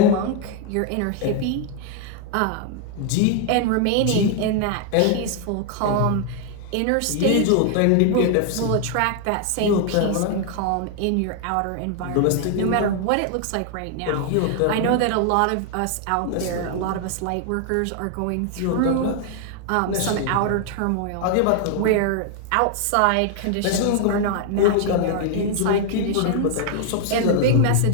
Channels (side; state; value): both; different; correlation 0.00